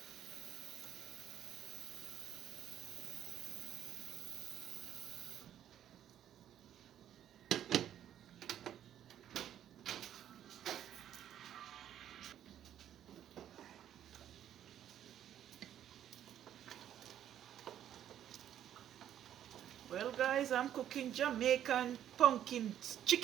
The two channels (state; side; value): quieter; left; 10.7 dB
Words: Well guys, I'm cooking Jamaican pumpkin